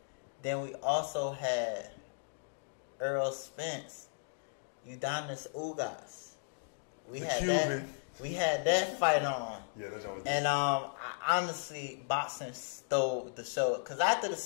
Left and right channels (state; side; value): silent; right; digital silence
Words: Then we also had Errol Spence, Yordenis Ugas. We had that fight on. Yeah, that's always and honestly, boxing stole the show. Cause after the